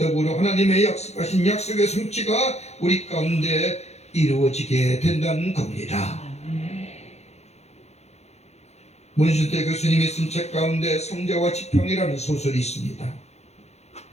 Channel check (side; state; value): right; late; 0.31 ms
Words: 하나님의 약속하신 약속의 성취가 우리 가운데 이루어지게 된다는 겁니다. 문순태 교수님이 쓴 책 가운데 성자와 지팡이라는 소설이 있습니다.